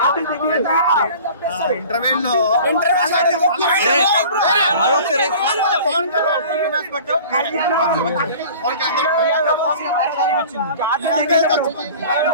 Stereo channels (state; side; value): inverted; both; correlation -0.43